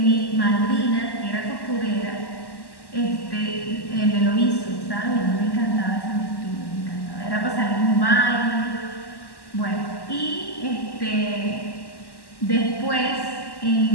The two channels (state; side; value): late; right; 1.1 ms